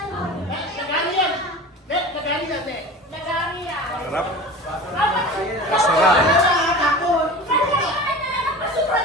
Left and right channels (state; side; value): normal; both; correlation 0.35